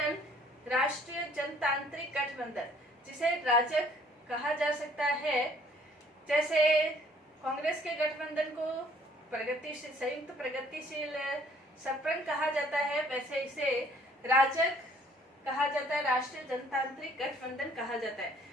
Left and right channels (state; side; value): normal; both; correlation 0.59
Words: राष्ट्रीय जनतांत्रिक गठबंधन, जिसे राजग कहा जा सकता है, जैसे कांग्रेस के गठबंधन को प्रगतिशील संयुक्त प्रगतिशील सपरंग कहा जाता है, वैसे इसे राजग कहा जाता है, राष्ट्रीय जनतांत्रिक गठबंधन कहा जाता है।